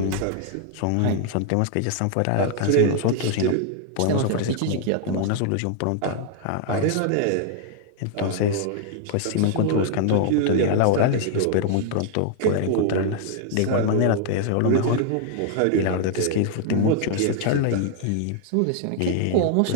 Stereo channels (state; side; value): different; both; correlation 0.00